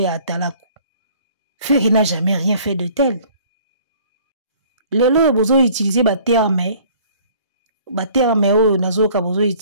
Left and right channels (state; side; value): inverted; both; correlation -0.54